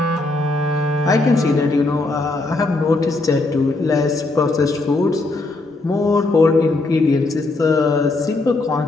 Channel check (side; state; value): right; quieter; 3.1 dB